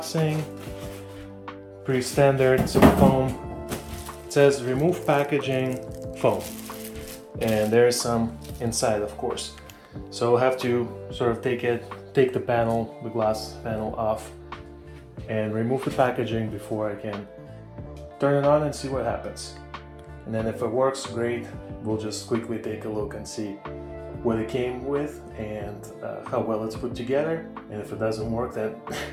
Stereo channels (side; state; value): both; identical; correlation 1.00